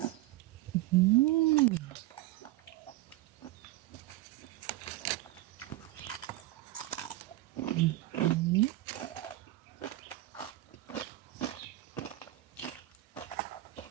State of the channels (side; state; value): left; quieter; 16.7 dB